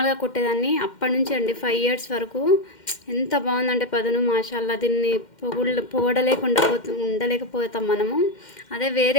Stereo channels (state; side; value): late; right; 2.1 ms